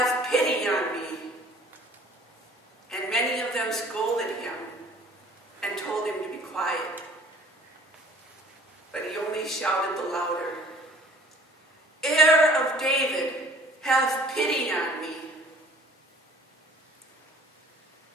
pity on me." And many of them scolded him and told him to be quiet. But he only shouted the louder, "Heir of David, have pity on me."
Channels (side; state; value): both; normal; correlation 0.51